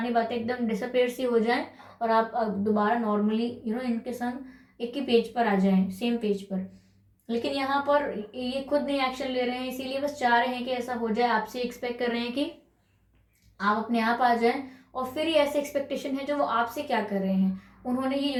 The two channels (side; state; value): both; identical; correlation 1.00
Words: बातें एकदम डिसअपेयर सी हो जाएं और आप दोबारा नॉर्मली इनके संग एक ही पेज पर आ जाएं, सेम पेज पर। लेकिन यहाँ पर ये खुद नहीं एक्शन ले रहे हैं, इसीलिए बस चाह रहे हैं कि ऐसा हो जाए, आपसे एक्सपेक्ट कर रहे हैं कि आप अपने आप आ जाएं। और फिर ये ऐसे एक्सपेक्टेशन है जो वो आपसे क्या कर रहे हैं, उन्होंने ये